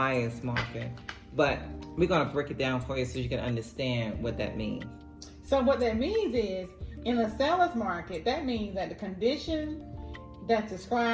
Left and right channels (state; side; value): identical; both; correlation 1.00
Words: market. But we're going to break it down for you so you can understand what that means. So what that means is, in a seller's market, that means that the condition that's